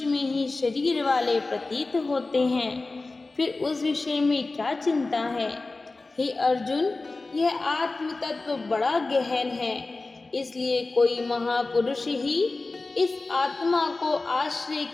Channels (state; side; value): quieter; right; 3.4 dB